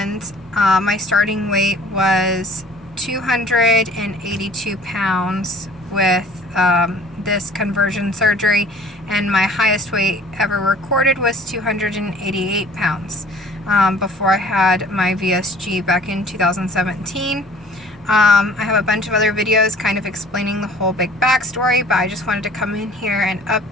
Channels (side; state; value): both; normal; correlation 0.50